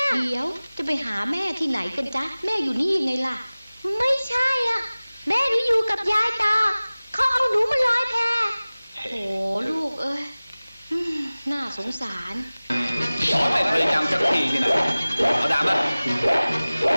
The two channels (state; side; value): inverted; both; correlation -0.99